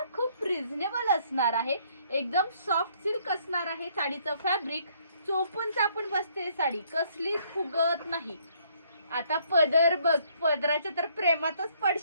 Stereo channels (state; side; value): inverted; both; correlation -0.66